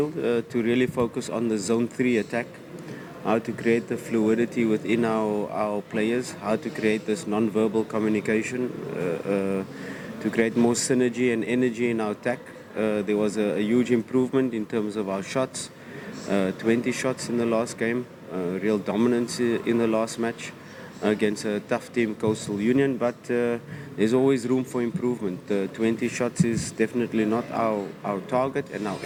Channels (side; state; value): both; identical; correlation 1.00